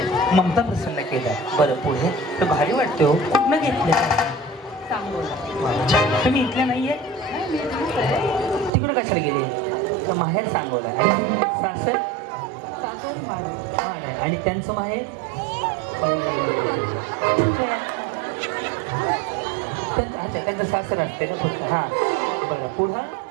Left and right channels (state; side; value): drops out; left; at 8.7 s